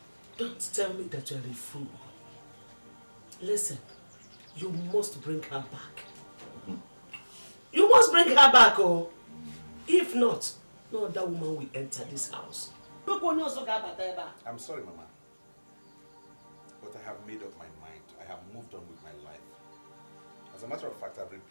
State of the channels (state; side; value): inverted; both; correlation -1.00